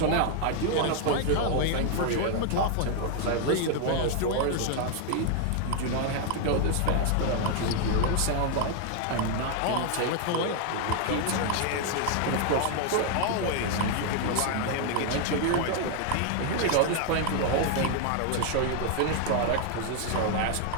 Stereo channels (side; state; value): both; different; correlation 0.00